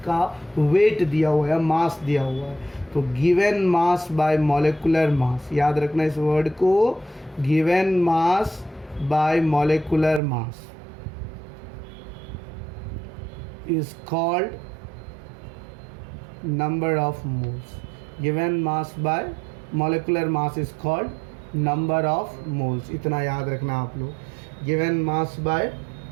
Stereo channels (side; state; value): left; drops out; at 10.2 s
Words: वेट दिया हुआ है, मास दिया हुआ है, तो गिवन मास बाय मॉलिक्यूलर मास, याद रखना इस वर्ड को, given mass by molecular mass is called number of moles. Given mass by molecular mass is called number of moles. इतना याद रखना आप लोग, given mass by